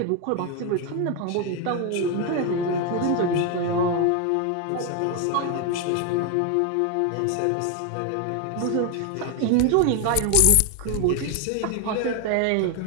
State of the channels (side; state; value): both; different; correlation 0.01